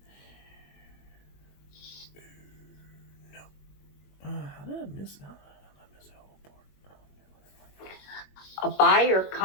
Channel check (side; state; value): right; late; 21 ms